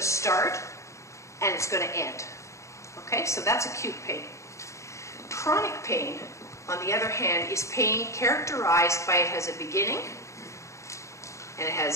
start and it's going to end. Okay, so that's acute pain. Chronic pain, on the other hand, is pain characterized by it has a beginning and it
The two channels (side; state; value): right; late; 0.14 ms